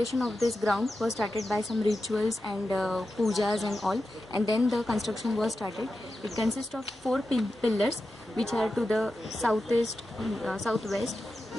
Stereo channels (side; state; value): both; normal; correlation 0.91